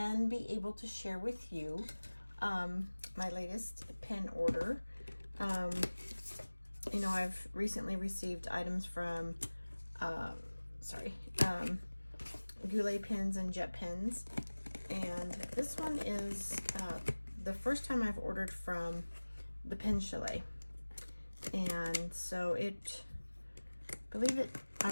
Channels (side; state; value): both; inverted; correlation -1.00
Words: be able to share with you my latest pen order. You know, I've recently received items from Goulet pens and jet pens, and this one is the first time I've ordered from the Pen Chalet. And so I